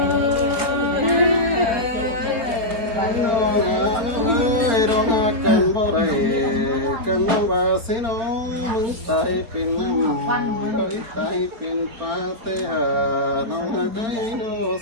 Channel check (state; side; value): late; left; 4.0 ms